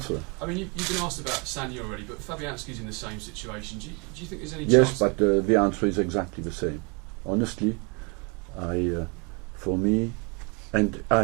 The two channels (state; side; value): quieter; left; 31.6 dB